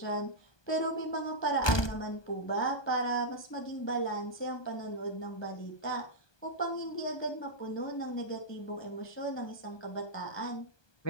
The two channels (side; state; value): right; late; 1.2 ms